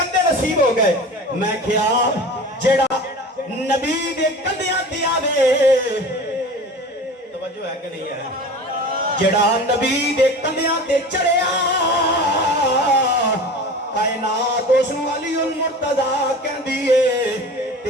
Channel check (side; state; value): both; normal; correlation 0.36